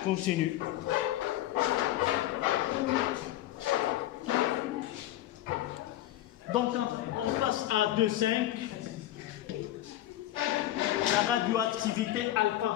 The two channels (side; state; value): right; quieter; 14.1 dB